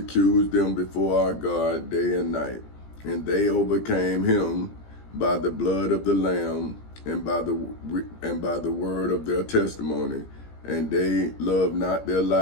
them before our God day and night. And they overcame him by the blood of the Lamb and by the word of their testimony, and they loved not their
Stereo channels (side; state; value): right; late; 17 ms